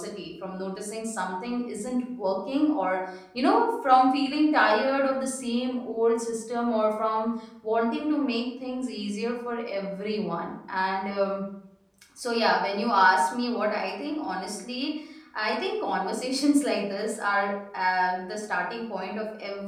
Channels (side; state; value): both; identical; correlation 1.00